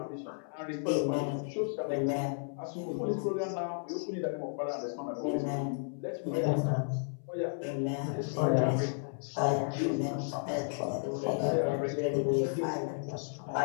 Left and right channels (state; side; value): silent; right; 56 dB below the other